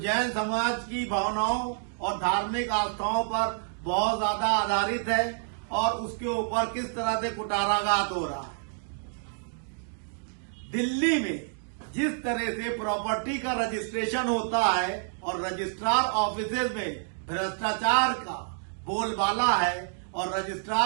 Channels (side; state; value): left; silent; digital silence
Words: समाज की भावनाओं और धार्मिक आस्थाओं पर बहुत ज्यादा आधारित है और उसके ऊपर किस तरह से कुटाराघात हो रहा है। दिल्ली में जिस तरह से प्रॉपर्टी का रजिस्ट्रेशन होता है और रजिस्ट्रार ऑफिसेज में भ्रष्टाचार का बोलबाला है और